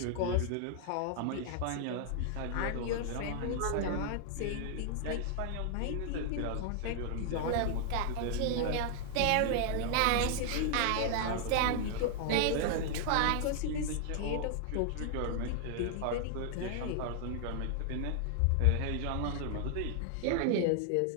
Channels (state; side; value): different; both; correlation 0.00